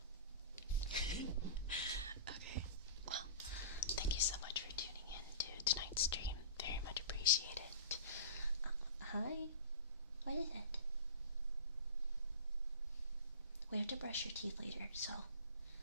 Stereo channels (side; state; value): both; inverted; correlation -0.33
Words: Okay. Well, thank you so much for tuning in to tonight's stream. Very much appreciate it. Hi. What is it? We have to brush your teeth later, so